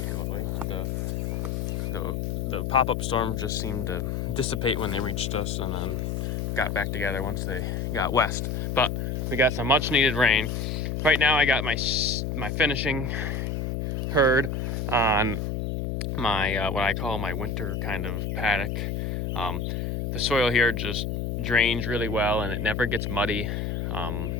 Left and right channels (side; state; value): left; noise; hum, 1 dB below the sound